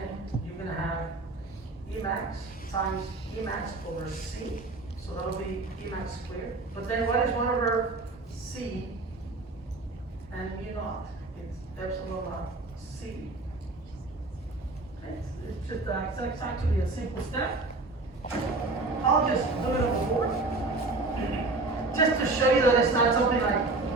you're gonna have E max times E max over C. So that'll be E max squared. But then what is 1 over C and mu naught? It's epsilon naught C. It's just it's actually a simple step. I'll just do it on the board, just to show you that it's not something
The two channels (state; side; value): quieter; left; 3.2 dB